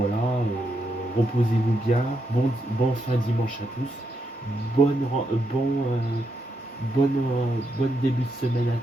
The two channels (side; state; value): both; normal; correlation 0.81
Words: reposez-vous bien, bon fin dimanche à tous, bonne début de semaine à